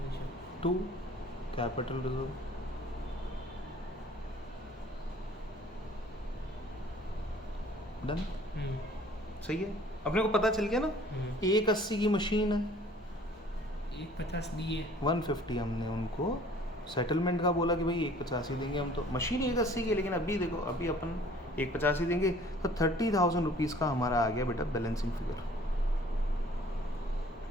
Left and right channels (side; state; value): both; normal; correlation 0.53